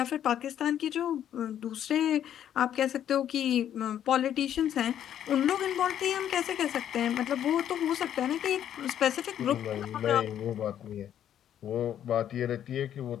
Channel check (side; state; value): right; quieter; 10.3 dB